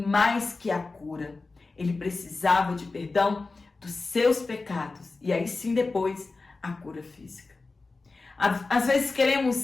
que a cura, ele precisava de perdão dos seus pecados. E aí sim depois a cura física. Às vezes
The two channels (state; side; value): quieter; right; 3.7 dB